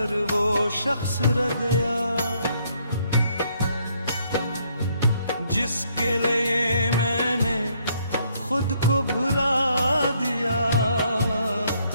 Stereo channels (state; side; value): inverted; both; correlation -0.70